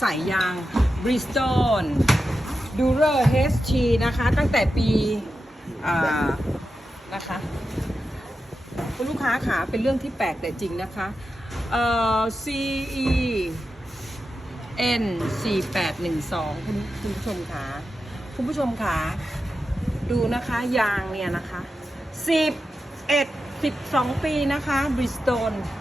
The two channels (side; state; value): both; normal; correlation 0.90